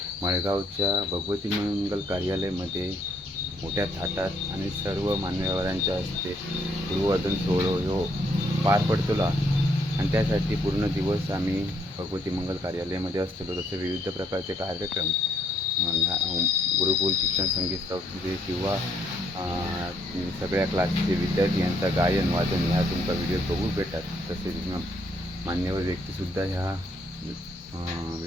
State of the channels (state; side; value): normal; both; correlation 0.69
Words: मळगावच्या भगवती मंगल कार्यालयामध्ये मोठ्या थाटात आणि सर्व मान्यवरांच्या हस्ते गुरुवादन सोहळा ह्यो पार पडतलो आणि त्यासाठी पूर्ण दिवस आम्ही भगवती मंगल कार्यालयामध्ये असतो. तसे विविध प्रकारचे कार्यक्रम गुरुकुल शिक्षण संगीत संस्थेचे किंवा सगळ्या क्लासचे विद्यार्थी यांचा गायन वादन ह्या तुमचा व्हिडिओ बघू भेटतात. तसेच मान्यवर व्यक्तीसुद्धा ह्या